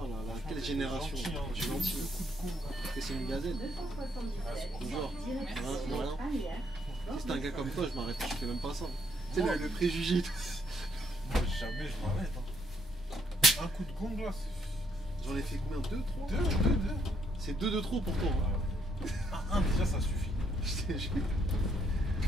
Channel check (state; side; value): normal; both; correlation 0.71